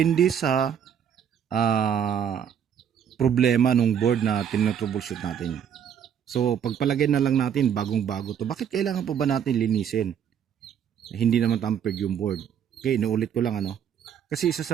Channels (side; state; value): left; quieter; 8.5 dB